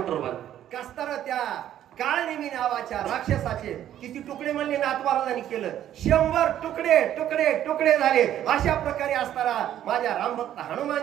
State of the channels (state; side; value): quieter; left; 11.4 dB